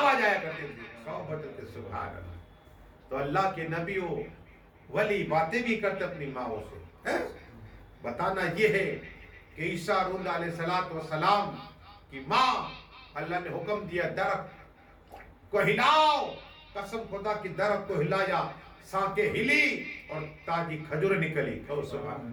آیا کرتی تھی، کہو مچل کے سبحان اللہ۔ تو اللہ کے نبی ولی باتیں بھی کرتے اپنی ماں سے۔ بتانا یہ ہے کہ عیسیٰ روح علیہ السلام کی ماں، اللہ نے حکم دیا درخت کو ہلاؤ، قسم خدا کی درخت کو ہلایا، سانکیں ہلی اور تازی کھجور نکلی، کہو سبحان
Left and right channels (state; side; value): identical; both; correlation 1.00